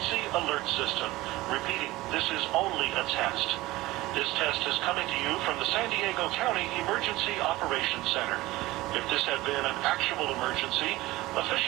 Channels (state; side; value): quieter; left; 18.6 dB